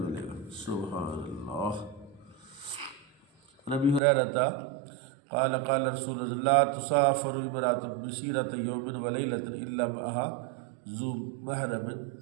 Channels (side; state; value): left; drops out; at 4.0 s